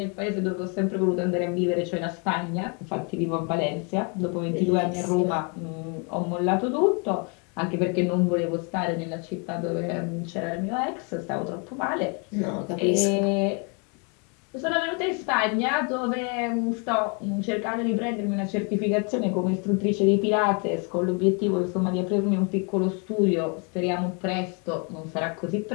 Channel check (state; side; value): quieter; right; 35.5 dB